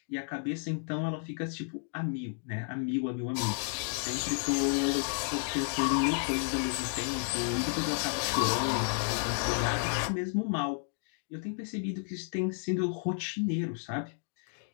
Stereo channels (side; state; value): right; silent; 56 dB below the other